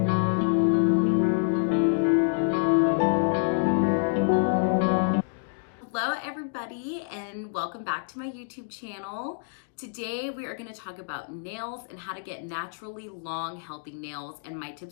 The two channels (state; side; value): silent; right; digital silence